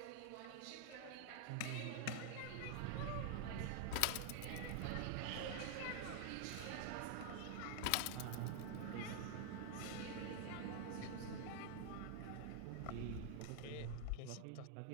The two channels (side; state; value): both; different; correlation 0.00